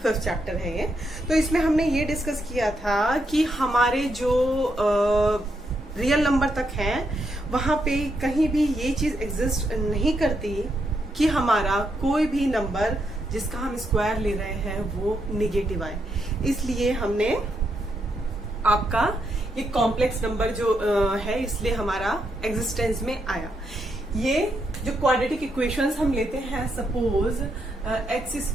5th चैप्टर है ये। तो इसमें हमने ये डिस्कस किया था कि हमारे जो रियल नंबर तक हैं वहां पे कहीं भी ये चीज एग्जिस्ट नहीं करती कि हमारा कोई भी नंबर जिसका हम स्क्वायर ले रहे हैं वो निगेटिव आए। इसलिए हमने आपका ये कॉम्प्लेक्स नंबर जो है इसलिए हमारा एग्जिस्टेंस में आया। ये जो क्वाड्रेटिक इक्वेशंस हम लेते हैं, सपोज एक्स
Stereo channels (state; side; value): normal; both; correlation 0.80